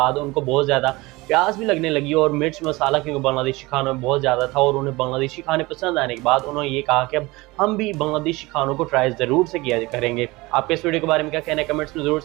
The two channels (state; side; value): quieter; left; 22.0 dB